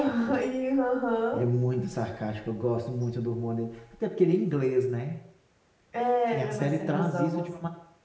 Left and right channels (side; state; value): both; identical; correlation 1.00